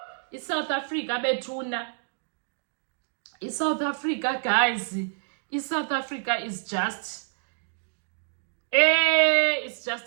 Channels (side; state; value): left; silent; digital silence